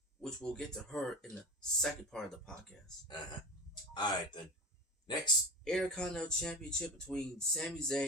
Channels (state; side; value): normal; both; correlation 0.27